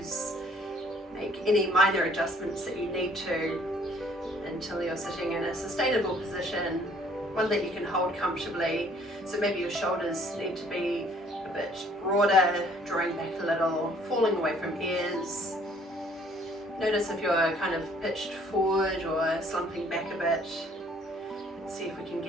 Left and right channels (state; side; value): normal; both; correlation 0.59